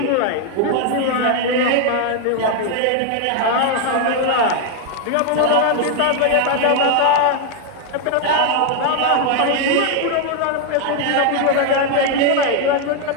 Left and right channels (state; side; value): different; both; correlation 0.00